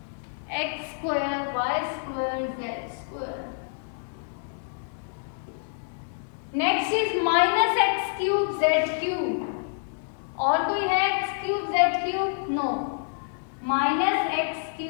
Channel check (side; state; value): right; silent; digital silence